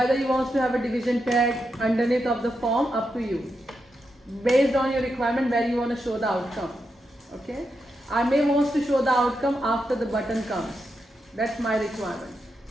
you want to have a division tag underneath of the form, up to you. Based on your requirement where you want to show the outcome. Okay, I may want to show the outcome after the button comes. That's my requirement.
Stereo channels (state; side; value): normal; both; correlation 0.86